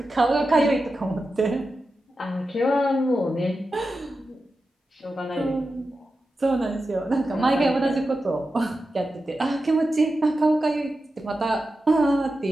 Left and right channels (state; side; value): normal; both; correlation 0.91